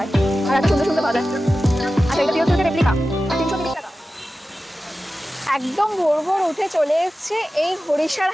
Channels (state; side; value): normal; both; correlation 0.94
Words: আর একটা সুন্দর সুন্দর পাওয়া যায়। আচ্ছা, এটা পিওর সিল্কের রেপ্লিকা 330 টাকা। একদম ভোর ভোর উঠে চলে এসছে এই হরিষার